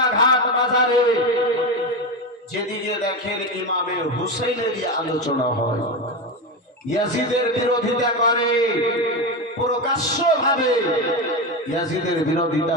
বাজারে যেদিকে দেখেন ইমামে হুসাইনেরই আলোচনা হয়, ইয়াজিদের বিরোধিতা করে, প্রকাশ্যভাবে ইয়াজিদের বিরোধিতা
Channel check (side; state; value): both; normal; correlation 0.17